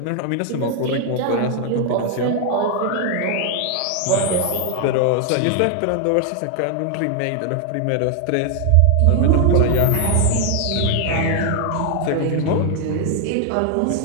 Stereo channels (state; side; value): different; both; correlation 0.00